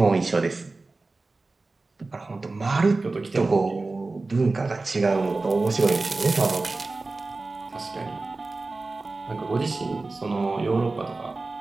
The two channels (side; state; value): left; quieter; 3.5 dB